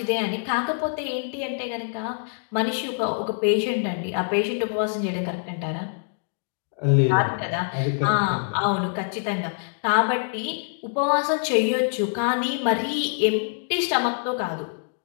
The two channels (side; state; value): right; silent; digital silence